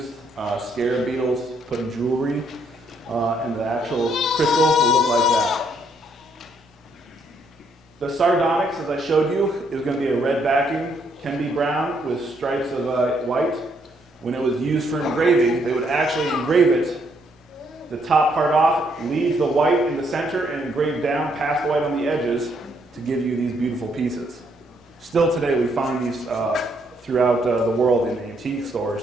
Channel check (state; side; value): normal; both; correlation 0.72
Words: scarab beetles put in jewelry, and the actual crystal will look like that. The sardonyx, as I showed you, is going to be a red backing, can be brown with stripes of white. When it was used for engraving, they would actually engrave it the top part off, leave the white in the center, and engrave down past the white on the edges to give you these beautiful pieces. Still today, we find these throughout the world in the antique stores.